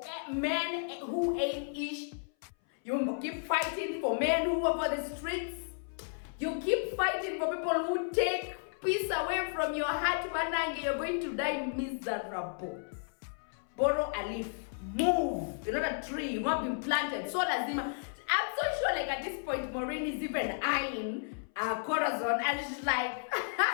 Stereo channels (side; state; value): right; silent; 56 dB below the other